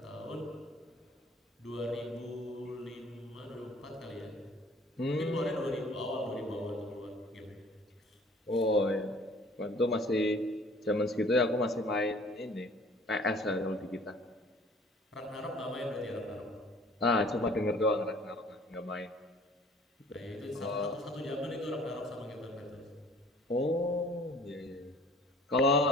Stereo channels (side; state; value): both; normal; correlation 0.51